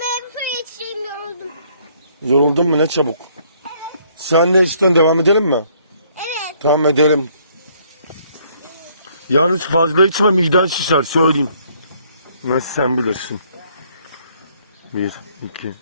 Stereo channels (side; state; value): both; inverted; correlation -0.65